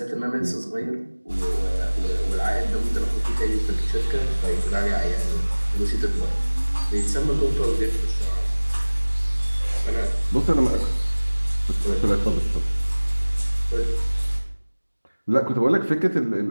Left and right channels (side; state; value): both; inverted; correlation -1.00